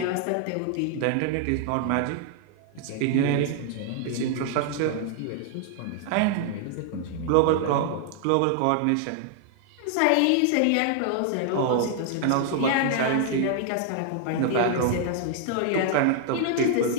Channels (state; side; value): different; both; correlation 0.00